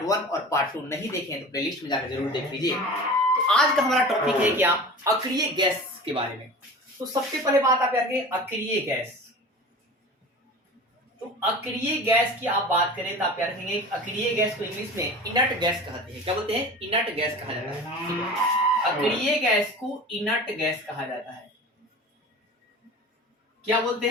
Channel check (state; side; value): normal; both; correlation 0.36